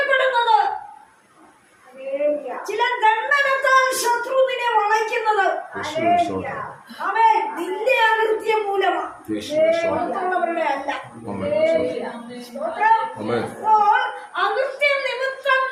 ചില ദണ്ഡനത്താൽ ശത്രു നിന്നെ വളയ്ക്കുന്നത് അവൻ നിന്റെ അകൃത്യം മൂലമാണ്, മറ്റുള്ളവരുടെ അല്ല. അപ്പോൾ അകൃത്യം നിമിത്തം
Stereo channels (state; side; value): identical; both; correlation 1.00